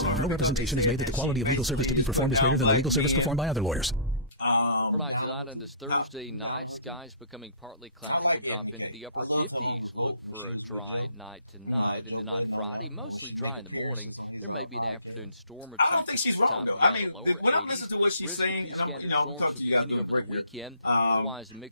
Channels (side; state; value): both; inverted; correlation -0.51